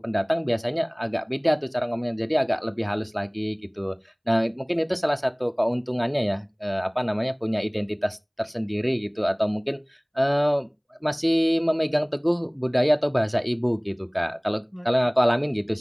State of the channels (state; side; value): identical; both; correlation 1.00